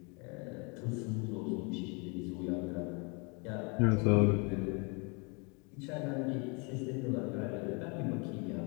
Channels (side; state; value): right; quieter; 32.6 dB